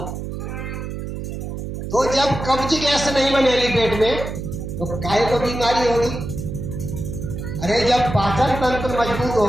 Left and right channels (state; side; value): noise; right; hum, 6 dB below the sound